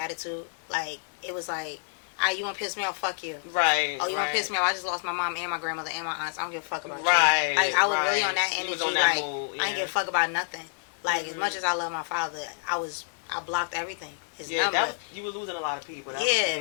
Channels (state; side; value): silent; right; digital silence